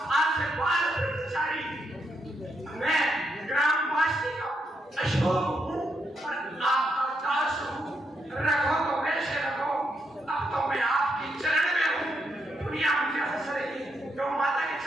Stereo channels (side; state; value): both; normal; correlation 0.79